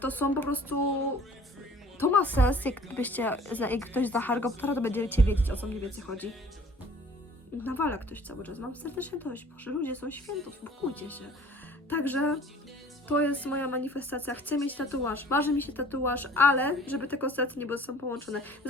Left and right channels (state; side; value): normal; both; correlation 0.51